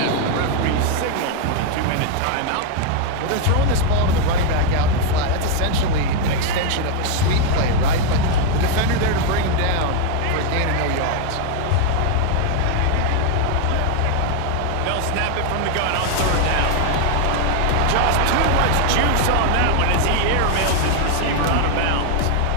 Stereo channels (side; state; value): both; different; correlation 0.01